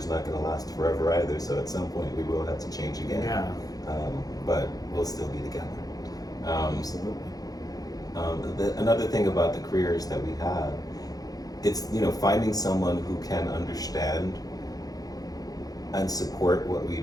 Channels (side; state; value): right; late; 0.18 ms